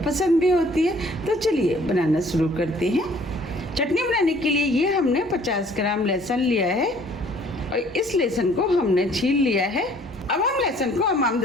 पसंद भी होती है। तो चलिए बनाना शुरू करते हैं। चटनी बनाने के लिए ये हमने 50 ग्राम लहसुन लिया है और इस लहसुन को हमने छील लिया है। अब हम लहसुन को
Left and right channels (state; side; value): normal; both; correlation 0.57